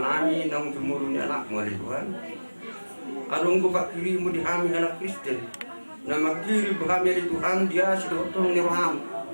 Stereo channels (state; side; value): inverted; both; correlation -1.00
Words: nang tumuruni anakmu alai Tuhan alungku pakirimu di kami anak Kristen nama kiri kami alai Tuhan dia sudah tolong ni roham